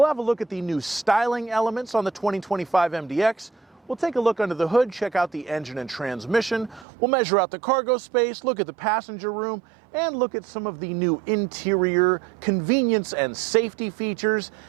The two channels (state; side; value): drops out; left; at 6.9 s